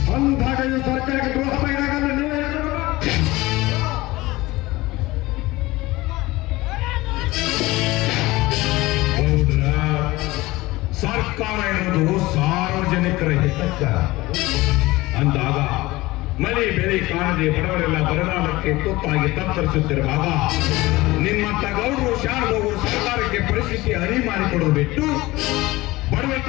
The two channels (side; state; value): right; quieter; 19.7 dB